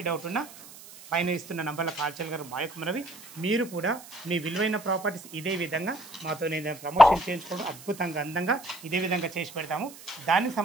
డౌట్ ఉన్నా పైన ఇస్తున్న నంబర్లో కాల్ చేయగలరు. మా యొక్క మనవి మీరు కూడా మీ విలువైన ప్రాపర్టీస్ ఇదే విధంగా మాతో నేను ప్రమోషన్ చేయించుకోవడం అద్భుతంగా అందంగా ఇదే విధంగా చేసి పెడతాము. దానికి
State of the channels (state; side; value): noise; right; hiss, 18 dB below the sound